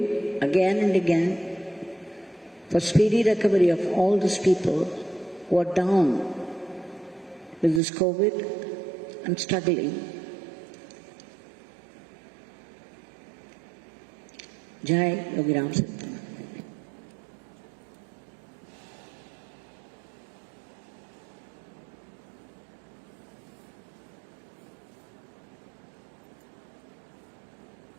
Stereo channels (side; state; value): left; drops out; at 7.8 s